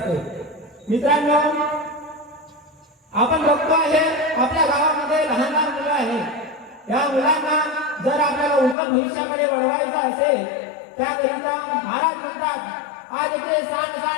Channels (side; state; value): right; drops out; at 8.8 s